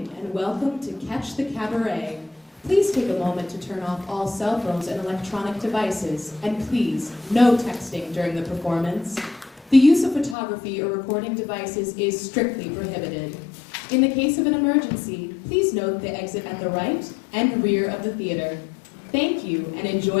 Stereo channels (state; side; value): drops out; right; at 10.4 s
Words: and welcome to Catch the Cabaret. Please take a moment to turn off all cell phones and electronic devices, and please, no texting during the performance. The use of photography or recording devices is strictly prohibited. In the case of an emergency, please note the exit at the right and rear of the theater. Thank you, and